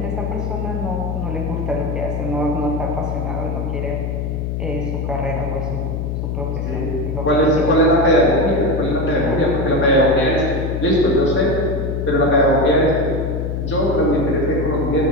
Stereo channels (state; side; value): noise; left; hum, 2 dB below the sound